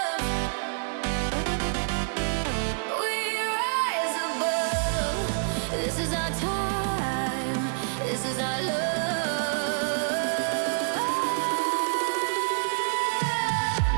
This is our time, this is our love.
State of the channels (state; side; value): silent; left; 59 dB below the other